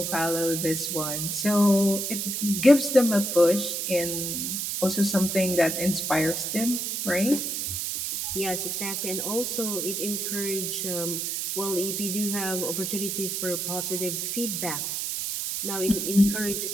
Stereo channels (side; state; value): right; noise; hiss, 2 dB below the sound